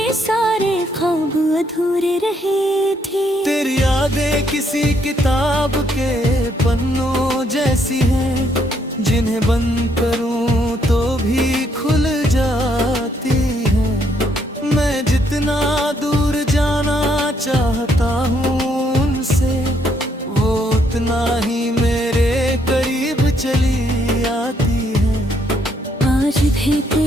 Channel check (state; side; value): normal; both; correlation 0.71